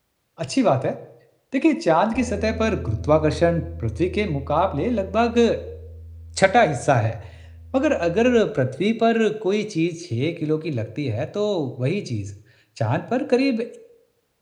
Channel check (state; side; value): identical; both; correlation 1.00